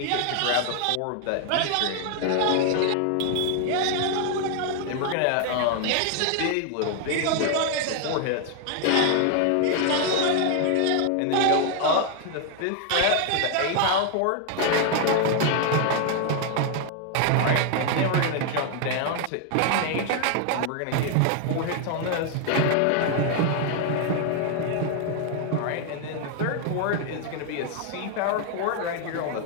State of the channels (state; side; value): different; both; correlation 0.00